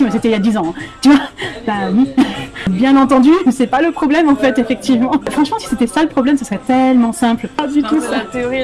mais c'était il y a 10 ans, hein. Tu vois, bah oui. Bien entendu, c'est pas le problème en fait, effectivement. Franchement, si c'était ça le problème, ce serait tellement simple. Pas du tout. La théorie et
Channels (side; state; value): both; identical; correlation 1.00